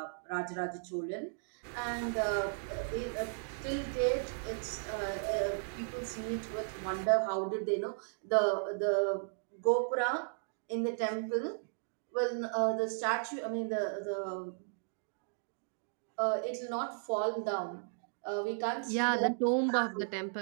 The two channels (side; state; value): left; silent; digital silence